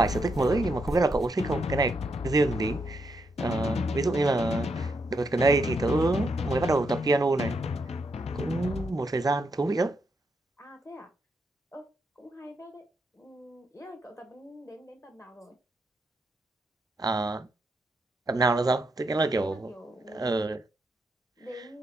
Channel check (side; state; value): both; normal; correlation 0.80